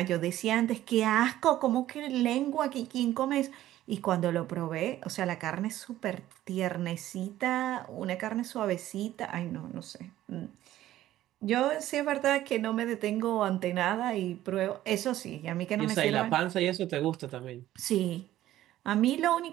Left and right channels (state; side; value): quieter; left; 13.9 dB